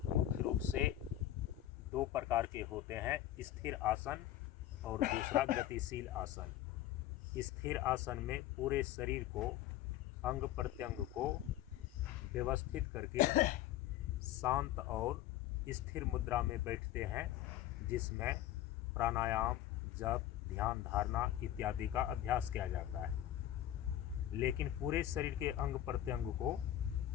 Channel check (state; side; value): quieter; right; 12.9 dB